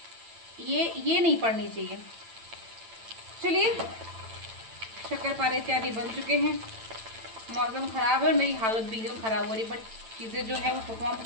ये नहीं पड़नी चाहिए। चलिए, शक्करपारे इत्यादि बन चुके हैं। मौसम ख़राब है और मेरी हालत भी एकदम ख़राब हो रही, बट चीज़ें जो है वो परफॉर्म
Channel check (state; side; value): late; left; 8.9 ms